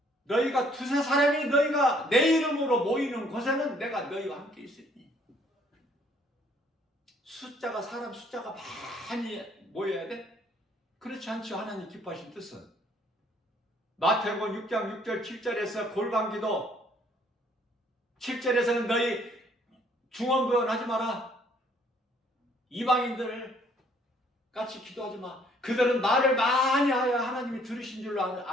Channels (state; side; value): normal; both; correlation 0.62